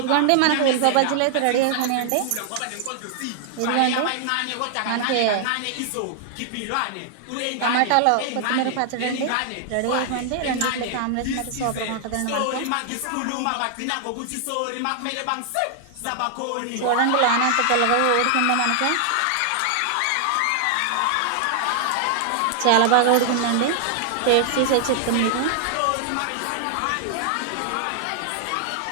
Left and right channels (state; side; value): different; both; correlation 0.00